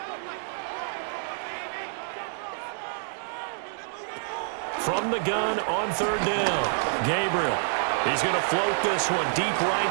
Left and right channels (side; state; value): left; silent; digital silence